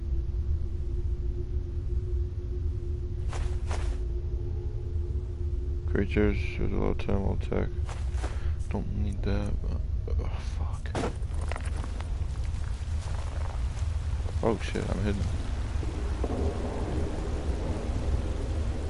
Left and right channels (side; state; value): both; identical; correlation 1.00